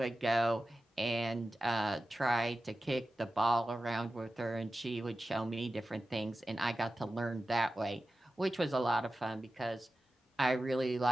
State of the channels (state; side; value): normal; both; correlation 0.94